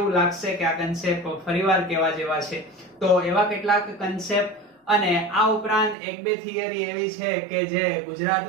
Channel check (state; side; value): drops out; left; at 6.0 s